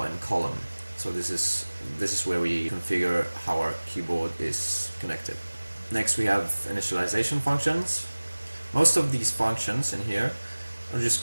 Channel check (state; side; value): inverted; both; correlation -1.00